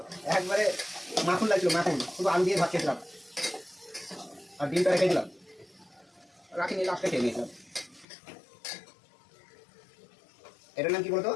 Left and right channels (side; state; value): right; drops out; at 8.1 s